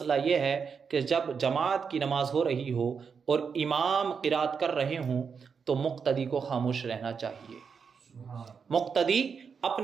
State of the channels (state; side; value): quieter; left; 6.1 dB